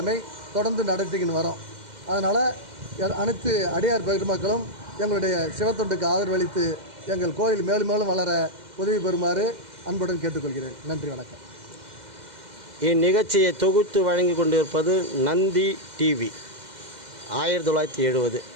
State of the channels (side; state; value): left; late; 2.0 ms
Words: தொடர்ந்து நடத்திக்கின்னு வரோம். அதனால் அனைத்து அடியார் பெருமக்களும் எங்களுடைய சிவத்தொண்டுக்கு ஆதரவளித்து எங்கள் கோயில் மேலும் மேலும் வளர உதவி பெறுமாறு அன்புடன் கேட்டுக்கொள்கிறேன். நன்றி, வணக்கம். இந்நிகழ்ச்சியை தொகுத்து வழங்கி கொண்டிருப்பது நந்தி டிவி 1970.